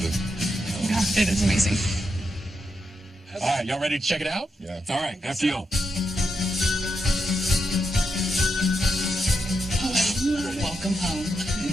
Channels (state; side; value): normal; both; correlation 0.84